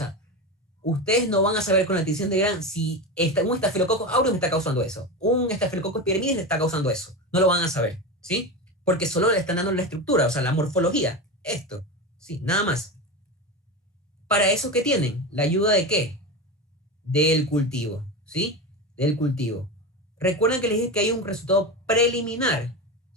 ustedes no van a saber con la tinción de Gram si un estafilococcus aureus me está causando eso, un estafilococcus epidermidis le está causando eso. No lo van a saber, ¿sí? Porque solo le están dando la estructura, o sea, la morfología. Esto, ¿sí? Nada más. ¿Para eso qué tienen? ¿La ayuda de qué? Del cultivo, ¿sí? Del cultivo. Recuerden que les dije que hay un resultado preliminar,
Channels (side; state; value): both; normal; correlation 0.21